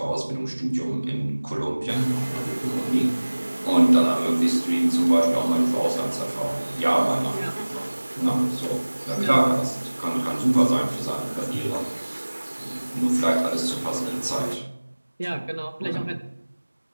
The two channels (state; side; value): inverted; both; correlation -1.00